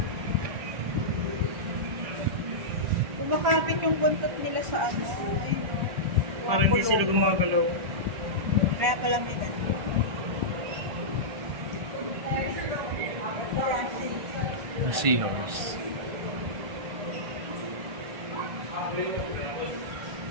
Kumakapit yung buntot nila sa ano. Parang hindi sila gumagalaw. Kaya kalamitan. A seahorse.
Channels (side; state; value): left; late; 1.5 ms